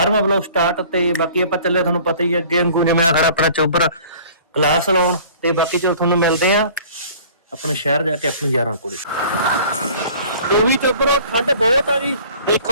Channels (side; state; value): both; inverted; correlation -0.49